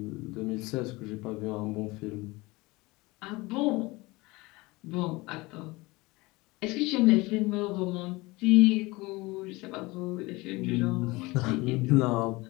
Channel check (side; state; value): right; quieter; 22.6 dB